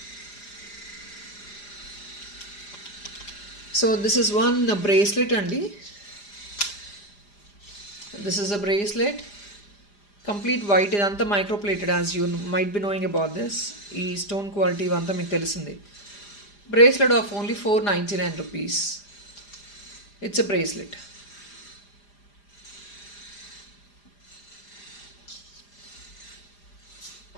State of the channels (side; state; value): right; late; 4.9 ms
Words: So this is one bracelet andi. This is a bracelet. Complete white. ఇదంతా microplated, as you might be knowing about this. ఈ stone quality ఇవంతా మీకు తెలిసింది. Bracelet of only 499 rupees. It's a bracelet.